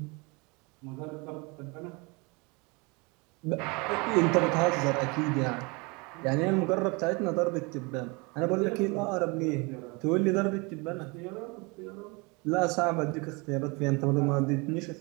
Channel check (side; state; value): left; quieter; 28.4 dB